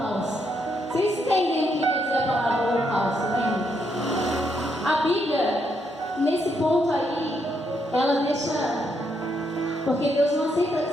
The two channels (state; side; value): normal; both; correlation 0.77